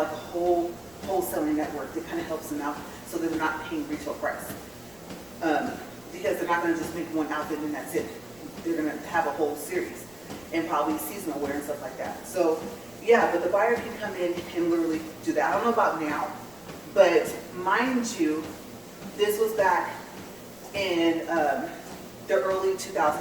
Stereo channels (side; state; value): left; noise; rumble, 27 dB below the sound